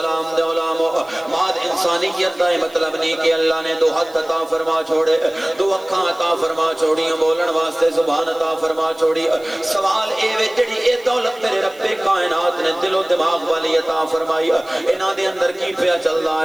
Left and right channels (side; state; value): right; noise; hiss, 25 dB below the sound